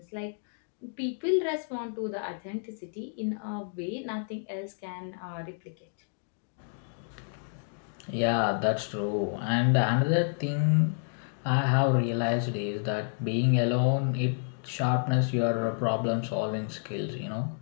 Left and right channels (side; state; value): right; silent; digital silence